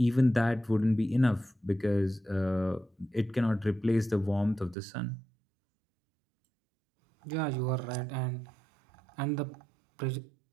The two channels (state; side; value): drops out; left; at 4.8 s